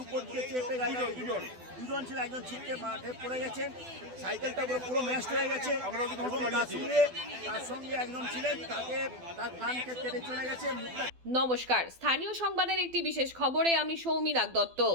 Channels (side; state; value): left; late; 12 ms